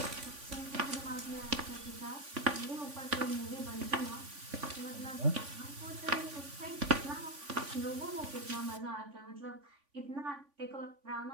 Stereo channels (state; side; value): late; left; 3.5 ms